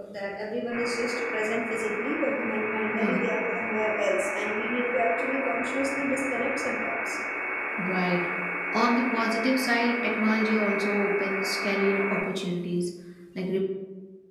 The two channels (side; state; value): both; identical; correlation 1.00